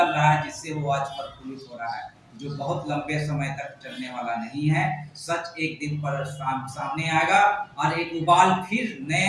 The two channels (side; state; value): both; identical; correlation 1.00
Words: रहा है, जिससे वो आज प्रफुल्लित हो रहा है, जो बहुत लंबे समय तक चलने वाला नहीं है। सच एक दिन पर सामने आएगा और एक उबाल फिर